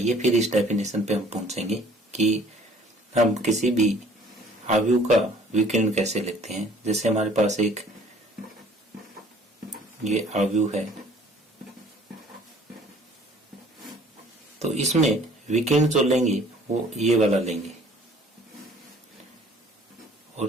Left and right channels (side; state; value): both; normal; correlation 0.54